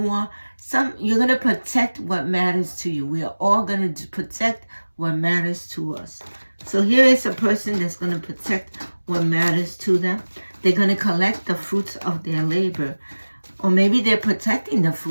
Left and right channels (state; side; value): inverted; both; correlation -1.00